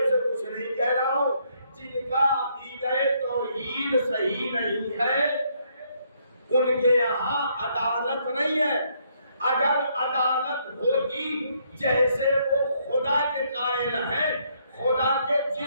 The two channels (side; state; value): both; inverted; correlation -0.71